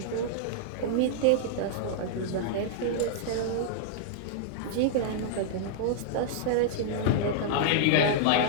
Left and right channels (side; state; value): both; different; correlation -0.01